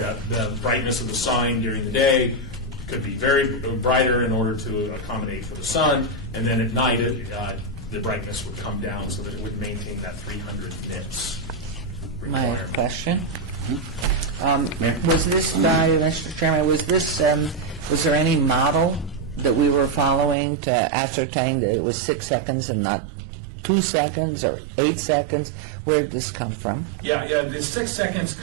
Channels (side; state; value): left; drops out; at 20.4 s